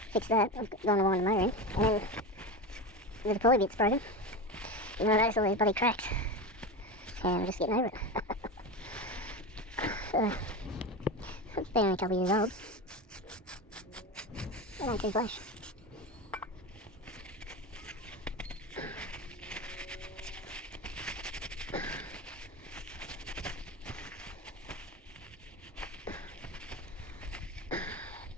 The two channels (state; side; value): normal; both; correlation 0.22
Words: fixed that, I've gone to wind the motor in, and then the deploy bit's broken, and I noticed all these bloody cracks, and I'm just getting over it. So, it's been only a couple of years old. They don't too flash.